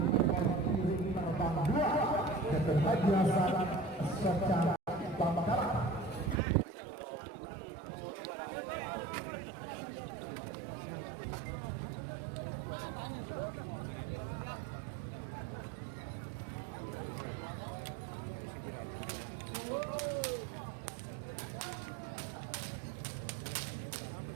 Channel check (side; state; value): left; drops out; at 6.4 s